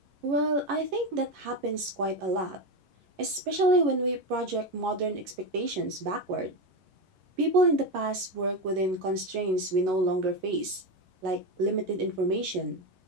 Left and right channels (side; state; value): left; late; 11 ms